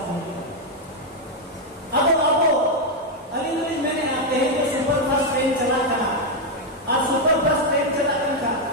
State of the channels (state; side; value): normal; both; correlation 0.02